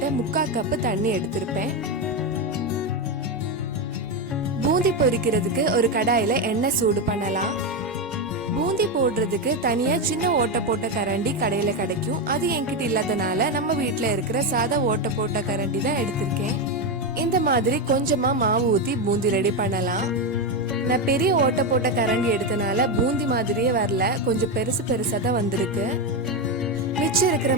3/4 கப் தண்ணி எடுத்திருப்பேன். பூந்தி பொரிக்கிறதுக்கு ஒரு கடாயில எண்ணெய் சூடு பண்ணலாம். பூந்தி போடுறதுக்கு தனியா சின்ன ஓட்டை போட்ட கரண்டி கடையில கிடைக்கும். அது என்கிட்ட இல்லாதனால நம்ம வீட்டுல இருக்கிற சாதா ஓட்டை போட்ட கரண்டி தான் எடுத்திருக்கேன். இந்த மாதிரி கொஞ்சமா மாவு ஊத்தி பூந்தி ரெடி பண்ணலாம். நான் பெரிய ஓட்டை போட்ட கரண்டி எடுத்தனால பூந்தி மாதிரியே வரல, கொஞ்சம் பெருசு பெருசா தான் வந்திருக்கு. மிச்சம் இருக்கிற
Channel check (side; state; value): both; normal; correlation 0.10